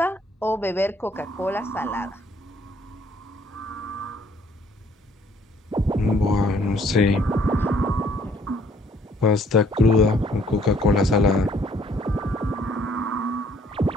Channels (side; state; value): both; normal; correlation 0.63